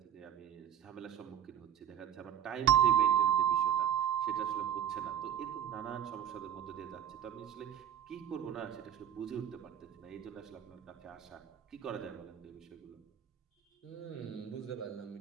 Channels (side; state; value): left; quieter; 9.4 dB